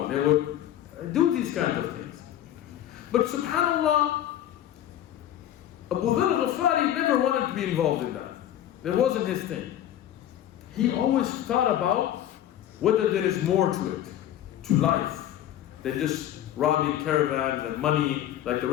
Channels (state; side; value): quieter; right; 11.7 dB